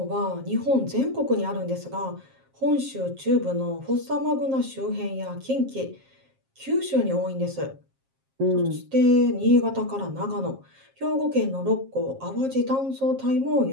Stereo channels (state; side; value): late; left; 7.5 ms